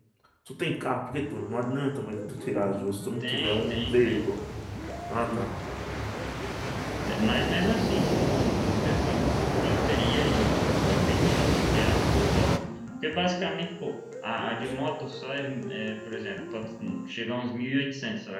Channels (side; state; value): both; identical; correlation 1.00